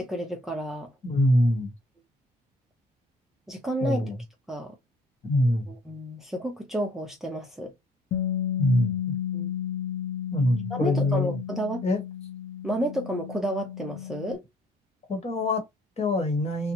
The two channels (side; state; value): both; normal; correlation 0.62